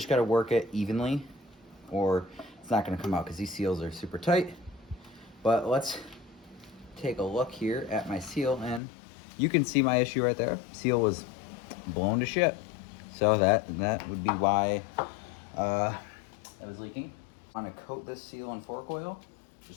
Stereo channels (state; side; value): drops out; right; at 8.8 s